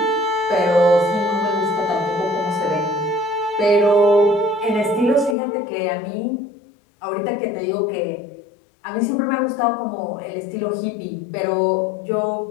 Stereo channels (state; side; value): drops out; right; at 5.4 s